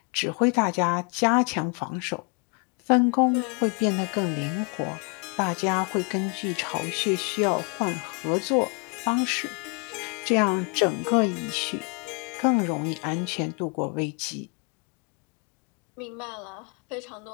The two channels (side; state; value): right; quieter; 36.6 dB